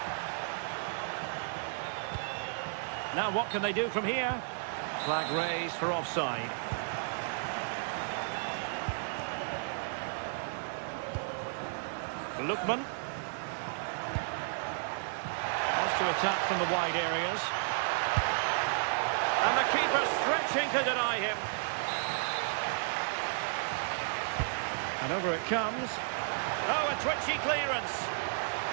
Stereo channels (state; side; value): silent; left; digital silence